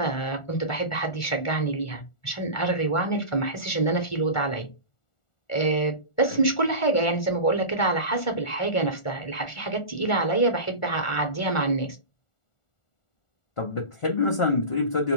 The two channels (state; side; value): late; right; 1.4 ms